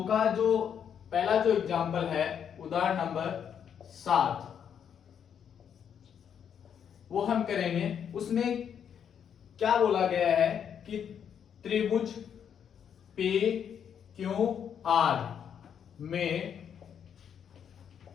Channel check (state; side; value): quieter; right; 8.2 dB